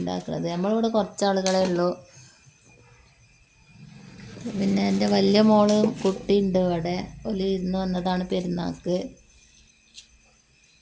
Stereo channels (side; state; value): both; identical; correlation 1.00